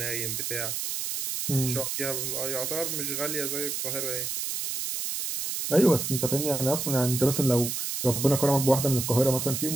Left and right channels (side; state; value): right; noise; hiss, 3 dB below the sound